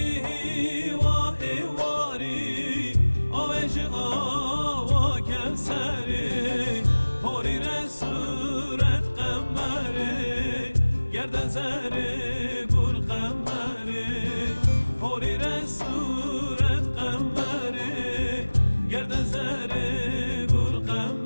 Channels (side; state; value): both; inverted; correlation -1.00